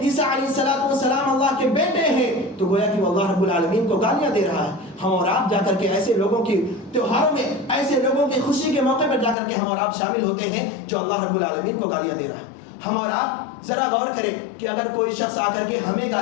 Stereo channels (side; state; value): right; drops out; at 9.3 s